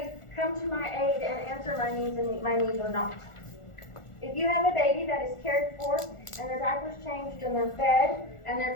come to my aid and answer my needs and meet my needs or not? If you have a baby that is cared for and their diapers changed and they're fed and they're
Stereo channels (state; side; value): late; right; 1.4 ms